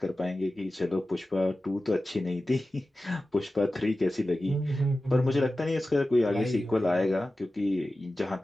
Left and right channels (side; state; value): both; normal; correlation 0.95